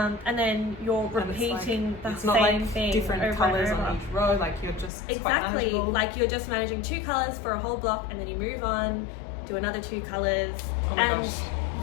then you're repeating the same thing different over colours and over. on each row, like you're just exactly like you're just managing 2 colours for a whole block, and then you move on, do another 2 colours. Oh my gosh.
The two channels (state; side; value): drops out; right; at 4.9 s